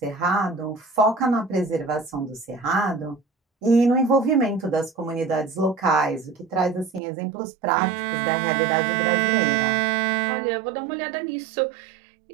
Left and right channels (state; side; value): drops out; left; at 7.0 s